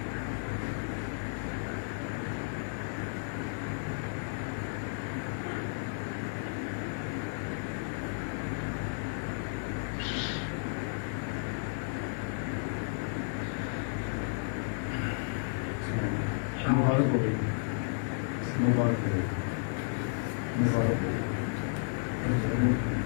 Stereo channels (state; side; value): silent; right; digital silence